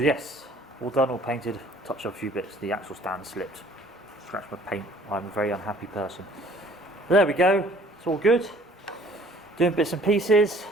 yes, all done, all painted, touched up a few bits, the axle stand slipped, scratched my paint, I'm a very unhappy person. But there we go, it's all good, doing bits and pieces,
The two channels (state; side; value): normal; both; correlation 0.55